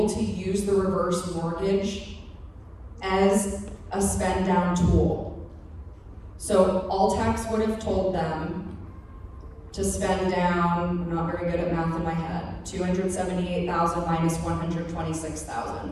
to use the reverse mortgage as a spend down tool. So ALTCS would have told them to spend down, I'm not very good at math in my head, $278,000 minus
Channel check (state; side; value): identical; both; correlation 1.00